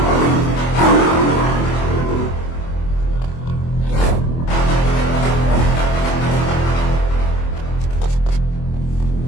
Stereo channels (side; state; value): right; late; 24 ms